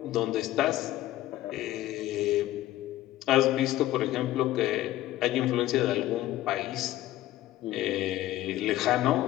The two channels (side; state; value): right; quieter; 14.9 dB